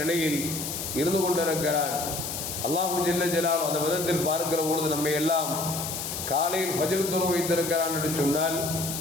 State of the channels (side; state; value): left; noise; hiss, 5 dB below the sound